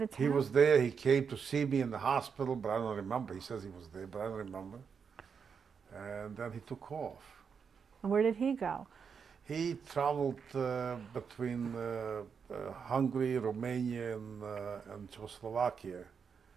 town? He was there. He came to see me in the hospital, but I don't remember. He says he was there, but I don't remember. And then he took off. And where did he go? He traveled between Hungary, Romania, and Czechoslovakia.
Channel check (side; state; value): left; quieter; 6.4 dB